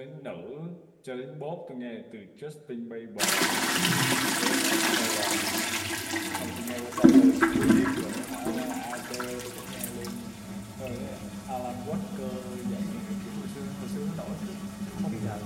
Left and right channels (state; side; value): identical; both; correlation 1.00